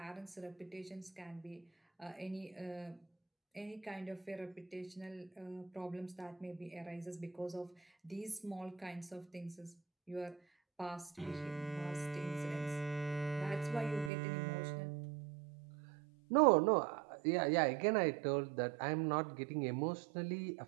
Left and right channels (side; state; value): left; drops out; at 14.1 s